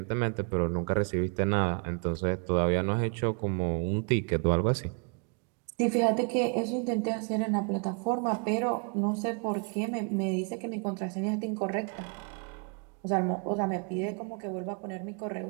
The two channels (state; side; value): quieter; left; 39.1 dB